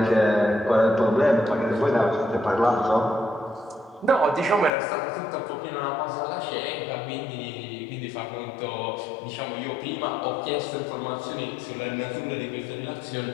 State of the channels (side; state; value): right; drops out; at 4.7 s